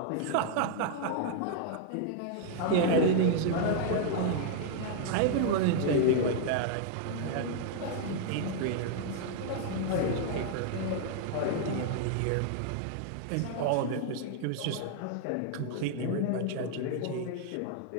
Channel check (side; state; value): both; different; correlation 0.00